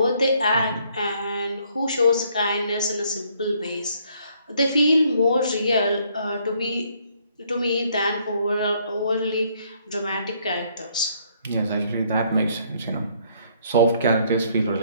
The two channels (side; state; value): both; inverted; correlation -0.66